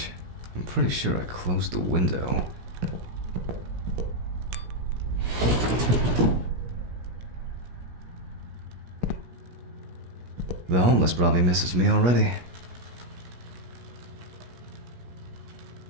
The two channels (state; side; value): late; left; 17 ms